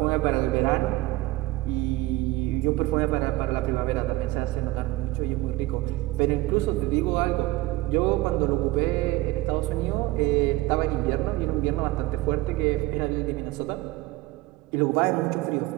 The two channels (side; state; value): left; quieter; 17.8 dB